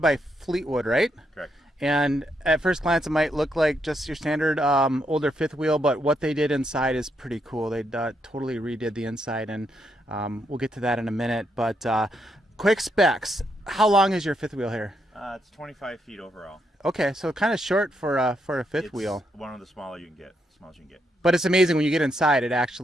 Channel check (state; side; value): normal; both; correlation 0.79